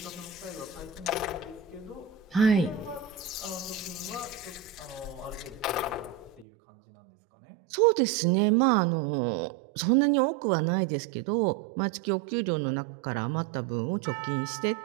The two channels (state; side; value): drops out; left; at 6.5 s